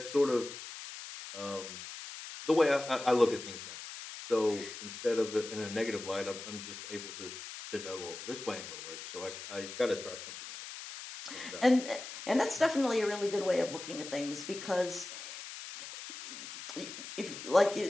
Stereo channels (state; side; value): noise; left; hiss, 10 dB below the sound